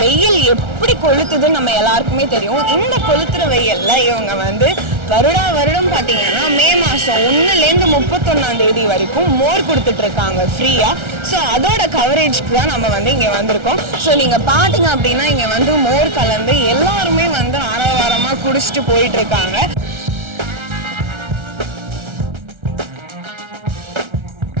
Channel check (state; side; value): late; left; 1.3 ms